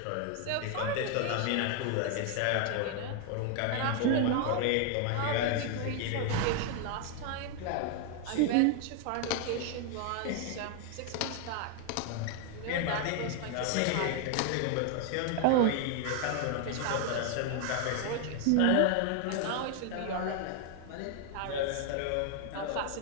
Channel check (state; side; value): different; both; correlation 0.00